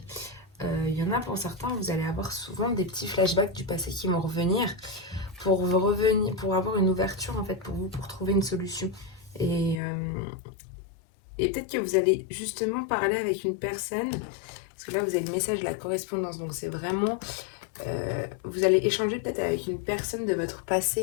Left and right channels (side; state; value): right; drops out; at 9.8 s